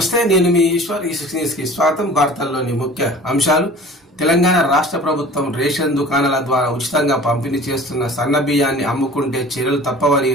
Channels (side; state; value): both; normal; correlation 0.44